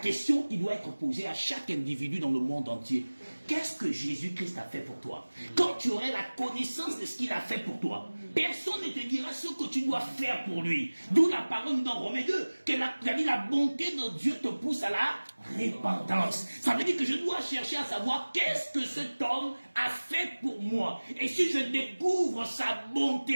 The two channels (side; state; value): both; inverted; correlation -1.00